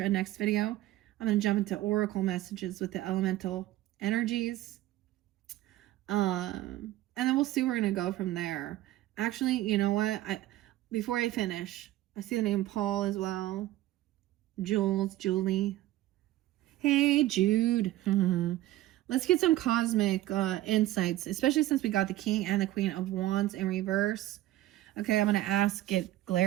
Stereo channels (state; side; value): quieter; left; 15.4 dB